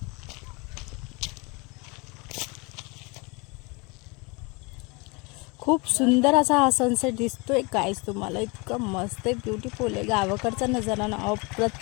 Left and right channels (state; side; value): quieter; right; 28.2 dB